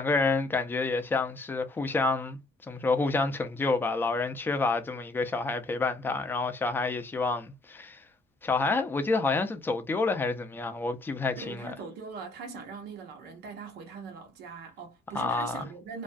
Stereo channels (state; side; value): quieter; right; 3.0 dB